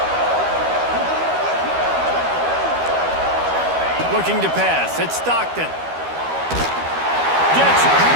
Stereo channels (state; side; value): late; left; 12 ms